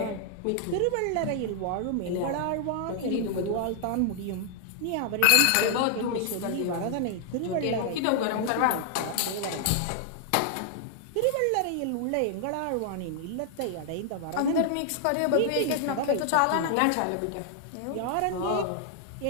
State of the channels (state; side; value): different; both; correlation 0.00